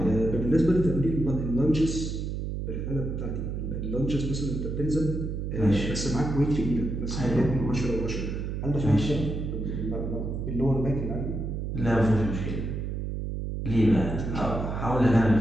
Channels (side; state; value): right; noise; hum, 4 dB below the sound